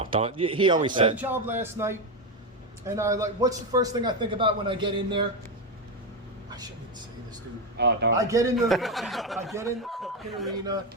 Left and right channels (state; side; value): normal; both; correlation 0.11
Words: don't. He always I had a said. job last night, and I like. What's the first thing I think about when I get in there? I shouldn't even say this, dude. Oh, don't. I get in the fucking arena.